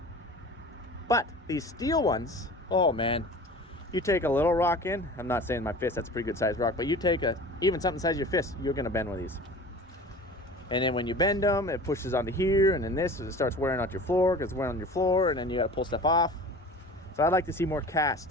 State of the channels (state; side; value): normal; both; correlation 0.39